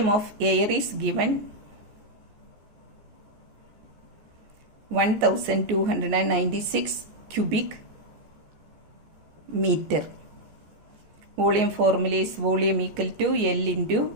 of air is given 1296 cubic meter. Volume formula is volume equal to L into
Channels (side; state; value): left; late; 14 ms